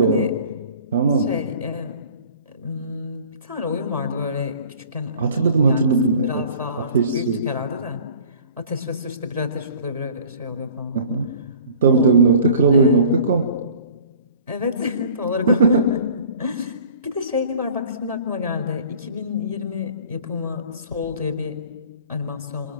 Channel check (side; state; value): both; inverted; correlation -0.47